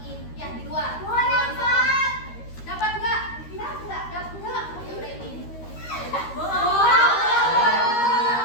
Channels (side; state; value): right; late; 13 ms